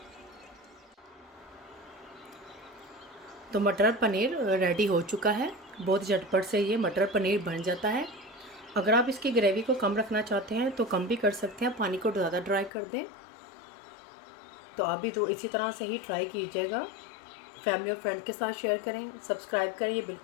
तो मटर पनीर रेडी हो चुका है, बहुत झटपट से ये मटर पनीर बन जाता है। अगर आप इसकी ग्रेवी को कम रखना चाहते हैं तो कम भी कर सकते हैं, पानी को ज़्यादा ड्राई कर दें। तो आप भी तो इसी तरह से ही ट्राई कीजिएगा। फैमिली और फ्रेंड के साथ शेयर करें, सब्सक्राइब करें, ये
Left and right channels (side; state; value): right; drops out; at 12.7 s